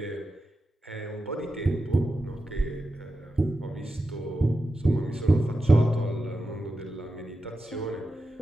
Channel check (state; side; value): normal; both; correlation 0.90